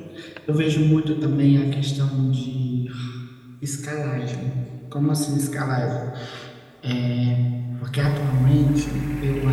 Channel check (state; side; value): identical; both; correlation 1.00